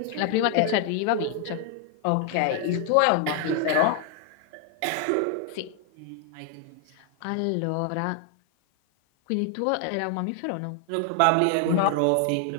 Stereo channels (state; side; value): different; both; correlation 0.00